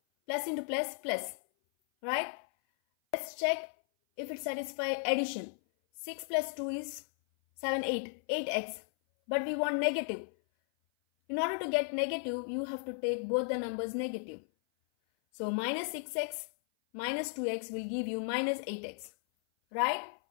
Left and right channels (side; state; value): right; silent; 54 dB below the other